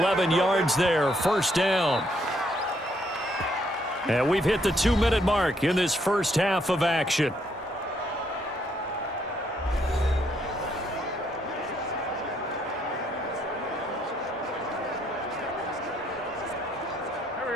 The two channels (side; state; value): both; normal; correlation 0.72